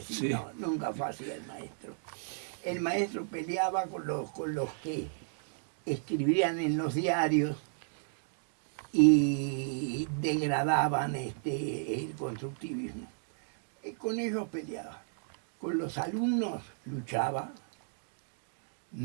sí, no, nunca fue así el maestro. El maestro peleaba con los que escribían en los diarios y degradaban el constructivismo. Y con ellos peleaba. Con los alumnos luchaba,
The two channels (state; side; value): silent; left; digital silence